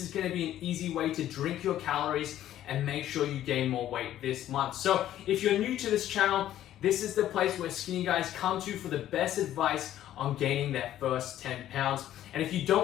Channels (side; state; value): right; quieter; 12.4 dB